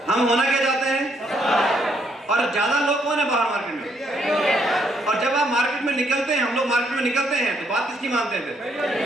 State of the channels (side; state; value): both; normal; correlation 0.72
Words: हम होना क्या चाहते हैं? और ज्यादा लोग कौन है बाहर मार्केट में? और जब आप मार्केट में निकलते हैं, हम लोग मार्केट में निकलते हैं, तो बात किसकी मानते हैं फिर?